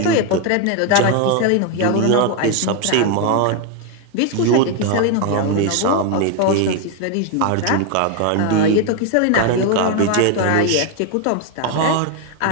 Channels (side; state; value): both; different; correlation 0.01